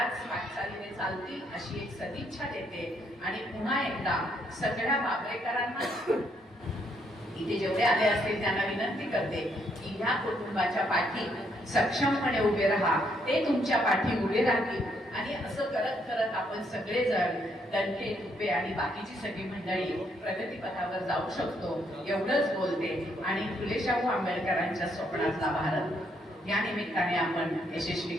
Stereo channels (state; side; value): normal; both; correlation 0.73